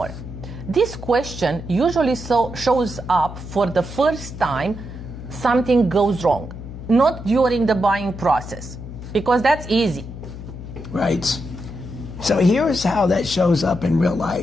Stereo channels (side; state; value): left; noise; hum, 11 dB below the sound